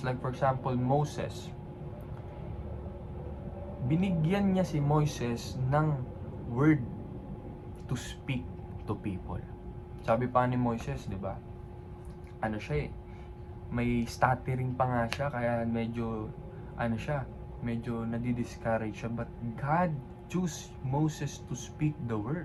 like for example Moses, binigyan niya si Moises ng word to speak to people. Sabi pa ni Moises, di ba? Ano siya may stuttering pa nga siya, kaya medyo nadi-discourage siya. But God chose Moses to speak the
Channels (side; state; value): both; identical; correlation 1.00